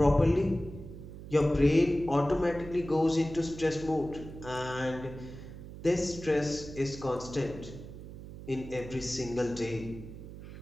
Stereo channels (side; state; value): right; noise; hum, 13 dB below the sound